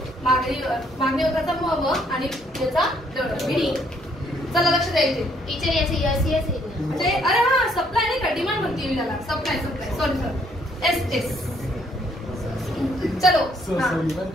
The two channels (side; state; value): both; normal; correlation 0.67